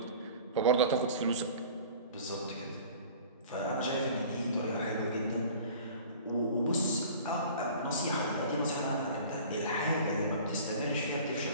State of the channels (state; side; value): inverted; both; correlation -0.44